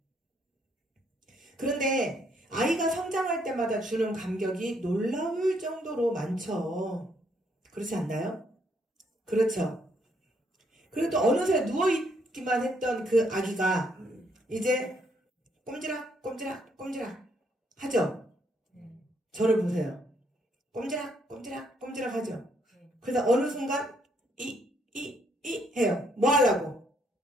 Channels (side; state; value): both; normal; correlation 0.71